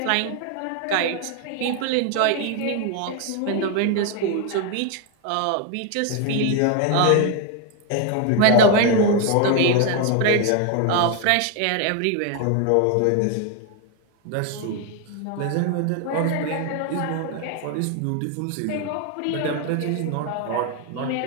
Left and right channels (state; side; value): different; both; correlation 0.01